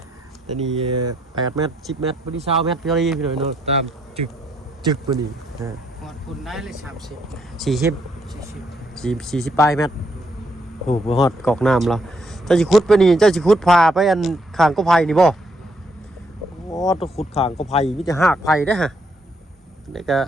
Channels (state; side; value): normal; both; correlation 0.73